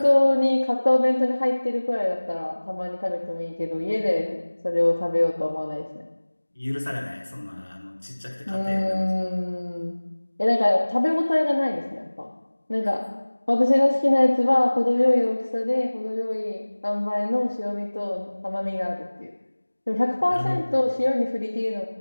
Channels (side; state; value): both; inverted; correlation -1.00